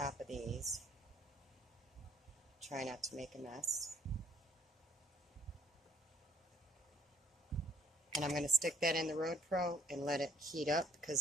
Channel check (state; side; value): normal; both; correlation 0.62